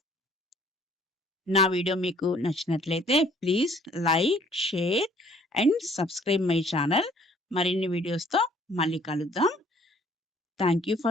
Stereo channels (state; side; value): normal; both; correlation 0.58